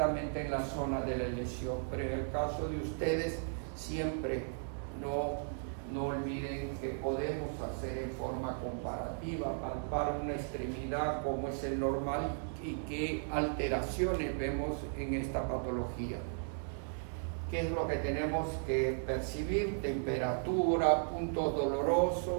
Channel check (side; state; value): left; silent; digital silence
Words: en la zona de la lesión, pero en el caso de ustedes siempre no olviden que podemos hacer en forma comparativa, palpar una extremidad como es el normal y qué alteraciones vemos en esta patología. ¿Qué es lo que tenemos que percibir? Temperatura, puntos